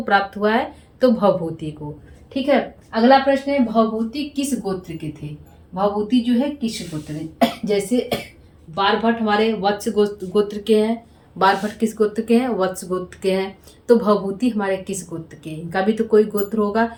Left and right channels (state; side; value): identical; both; correlation 1.00